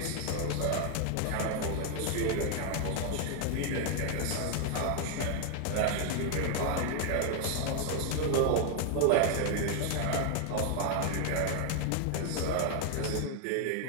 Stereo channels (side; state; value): both; different; correlation 0.00